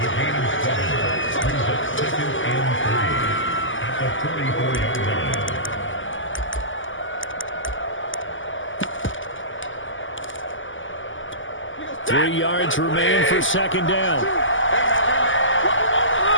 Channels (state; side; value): late; right; 0.57 ms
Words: Three yards remain for second down.